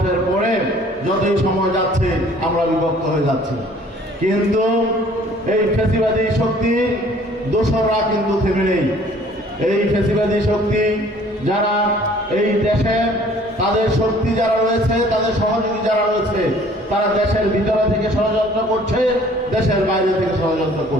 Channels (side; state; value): both; normal; correlation 0.55